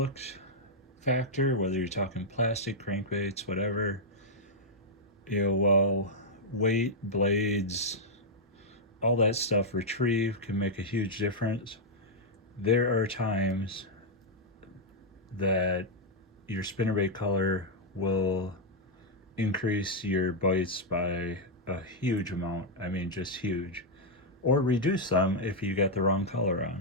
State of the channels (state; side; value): normal; both; correlation -0.04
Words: factor, whether you're talking plastic, crankbaits, whatever. While weight, blades, all that stuff retrieve can make a huge difference, there are times that your spinnerbait color will increase your bites by a huge amount. I mean, just huge. Or reduce them if you got the wrong color